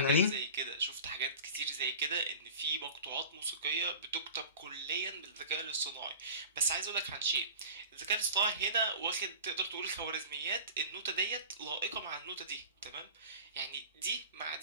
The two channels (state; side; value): inverted; both; correlation -0.36